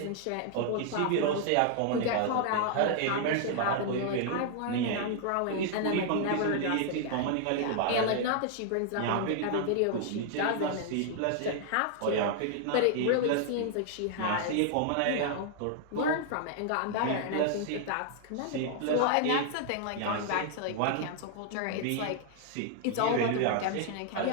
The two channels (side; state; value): both; different; correlation 0.00